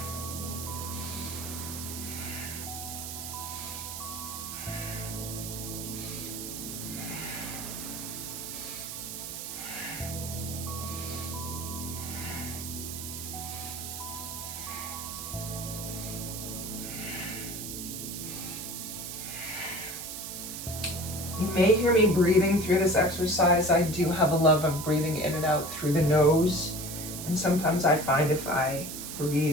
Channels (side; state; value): right; noise; hiss, 7 dB below the sound